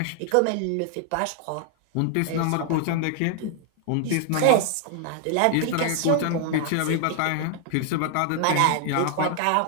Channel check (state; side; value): different; both; correlation 0.00